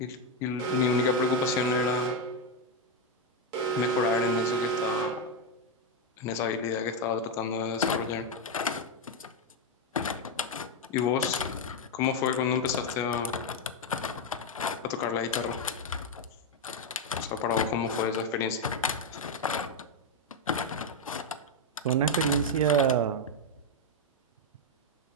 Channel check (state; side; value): normal; both; correlation 0.04